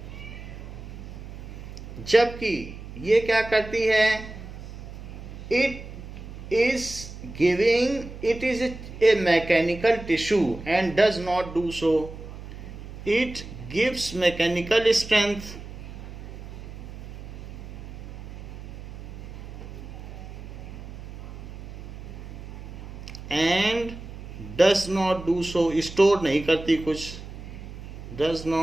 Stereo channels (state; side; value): noise; right; hum, 12 dB below the sound